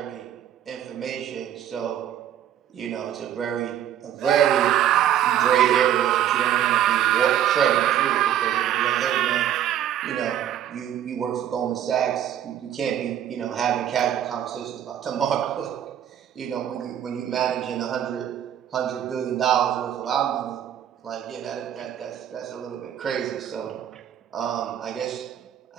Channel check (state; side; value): quieter; left; 10.6 dB